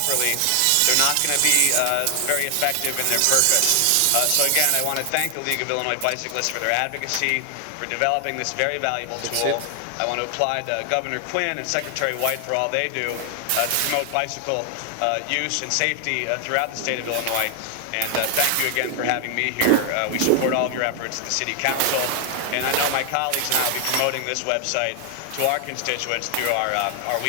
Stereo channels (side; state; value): both; different; correlation 0.00